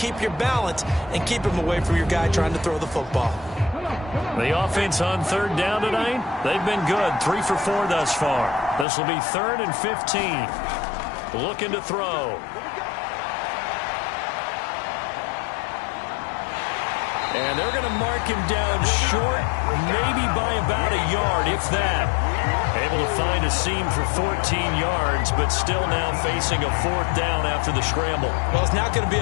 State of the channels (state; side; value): drops out; right; at 8.8 s